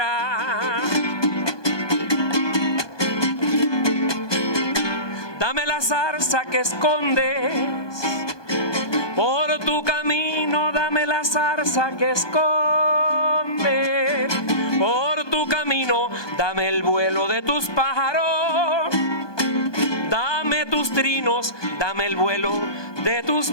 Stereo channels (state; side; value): late; right; 1.2 ms